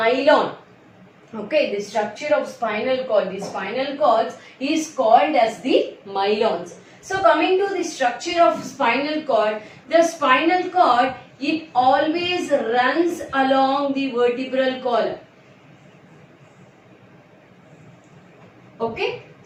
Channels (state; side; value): identical; both; correlation 1.00